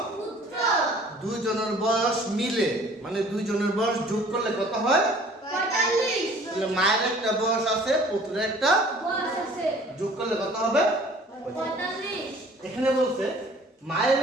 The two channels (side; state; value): both; normal; correlation 0.52